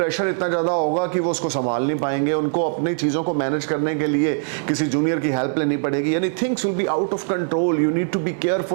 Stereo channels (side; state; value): left; silent; digital silence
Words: इतना ज्यादा होगा कि वो उसको संभाल नहीं पाएंगे, उनको अपनी चीजों को मैनेज करने के लिए किसी जूनियर की हेल्प लेनी पड़ेगी, यानी things will be out of control. You need to be